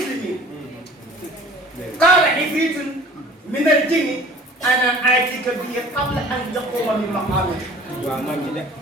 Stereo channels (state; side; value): normal; both; correlation 0.47